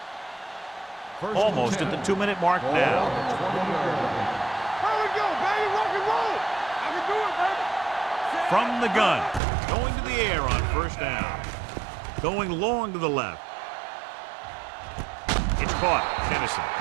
Almost at the 2-minute mark now. There we go, baby. Rock and roll. I can do it, baby. From the gun. Going to the air on first down. Going long to the left. It's caught. Tennyson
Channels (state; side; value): drops out; left; at 9.4 s